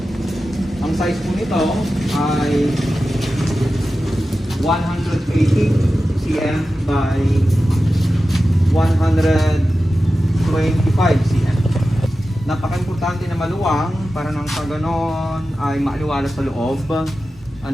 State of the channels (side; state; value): both; normal; correlation 0.93